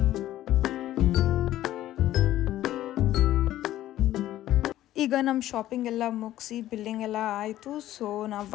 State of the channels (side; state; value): right; quieter; 13.7 dB